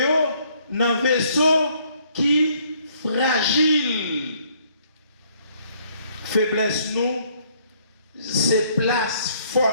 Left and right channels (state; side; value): inverted; both; correlation -0.65